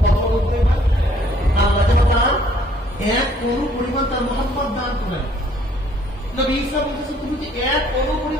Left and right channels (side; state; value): both; normal; correlation 0.61